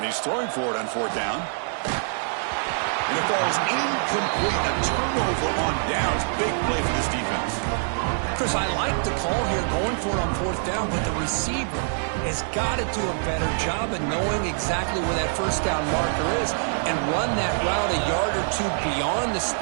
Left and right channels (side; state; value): left; silent; 57 dB below the other